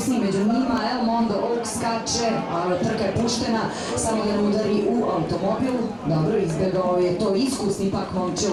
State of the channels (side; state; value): both; identical; correlation 1.00